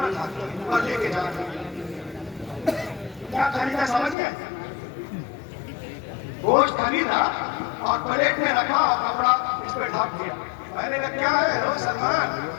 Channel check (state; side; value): drops out; right; at 4.2 s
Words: ढाके और लेके जाते। क्या खरीदा समझ गए? गोश्त खरीदा और प्लेट में रखा और कपड़ा इस पे ढक दिया। मैंने कहा क्या है रो सलमान?